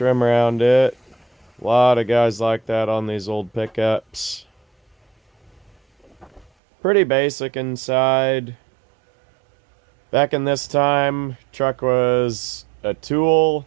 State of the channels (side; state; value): left; drops out; at 6.5 s